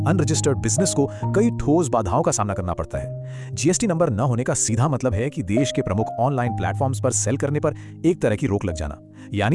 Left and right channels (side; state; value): both; identical; correlation 1.00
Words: अनरजिस्टर्ड बिजनेस को कई ठोस बाधाओं का सामना करना पड़ता है। जीएसटी नंबर न होने का सीधा मतलब है कि देश के प्रमुख ऑनलाइन प्लेटफॉर्म्स पर सेल करने पर एक तरह की रोक लग जाना,